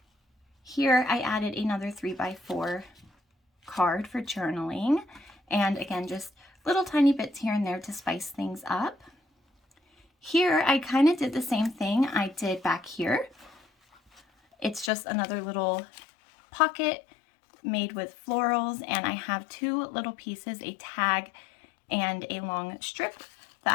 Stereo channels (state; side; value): drops out; right; at 14.9 s